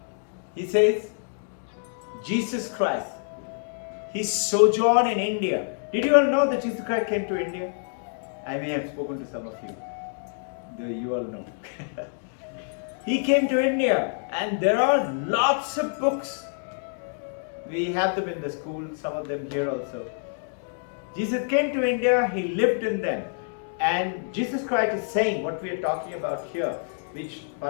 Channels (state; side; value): silent; right; 58 dB below the other